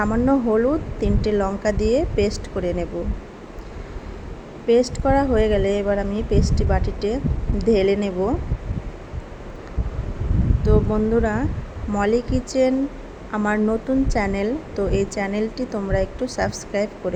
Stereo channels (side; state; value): both; identical; correlation 1.00